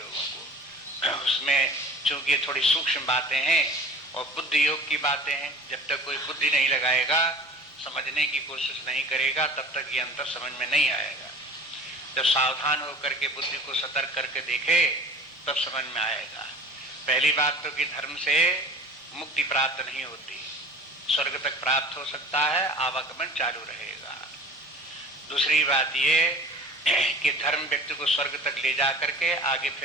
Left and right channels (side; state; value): both; normal; correlation 0.43